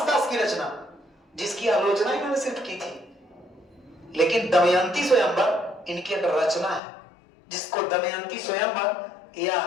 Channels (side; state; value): right; drops out; at 6.8 s